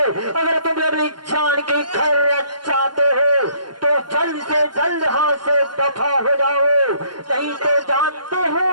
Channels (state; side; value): late; left; 0.71 ms